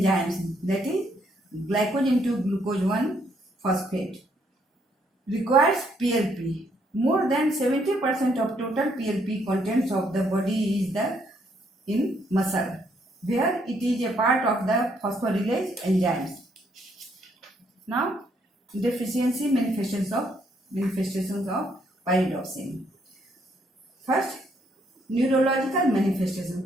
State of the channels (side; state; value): both; normal; correlation 0.71